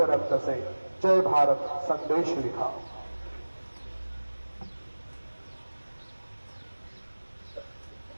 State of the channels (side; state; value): both; inverted; correlation -1.00